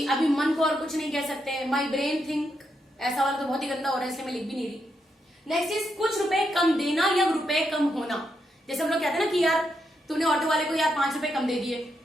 अभी मन को और कुछ नहीं कह सकते। माई ब्रेन थिंक, ऐसा वाला तो बहुत ही गंदा हो रहा है इसलिए मैं लिख भी नहीं रही। नेक्स्ट इज कुछ रुपए कम देना या रुपए कम होना। जैसे हम लोग कहते हैं ना कि यार तूने ऑटो वाले को यार 5 रुपए कम दे दिए,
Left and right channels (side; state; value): both; normal; correlation 0.81